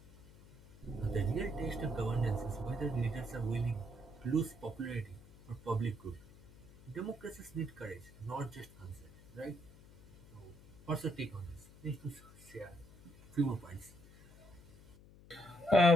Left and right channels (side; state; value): left; noise; hum, 21 dB below the sound